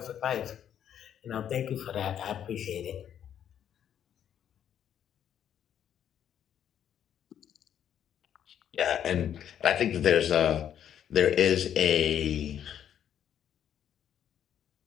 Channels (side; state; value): right; quieter; 9.6 dB